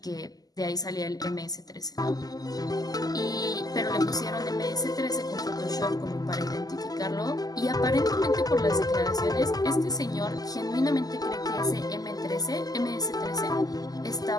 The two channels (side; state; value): right; late; 0.18 ms